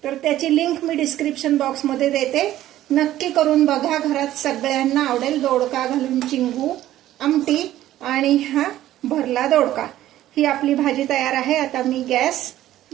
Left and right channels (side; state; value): left; quieter; 13.7 dB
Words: तर त्याची लिंक मी डिस्क्रिप्शन बॉक्समध्ये देते, नक्की करून बघा. घरात सगळ्यांना आवडेल. दोडका घालून चिंगू आमटी आणि हा भरला दोडका. ही आपली भाजी तयार आहे. आता मी गॅस